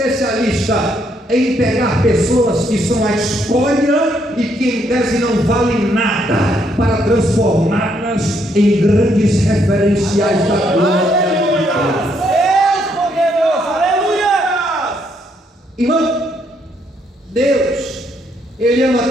em pegar pessoas que são a escória e que em tese não valem nada, para transformá-las em grandes referenciais da glória. Irmão, Deus, Ele ama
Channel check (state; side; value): normal; both; correlation 0.73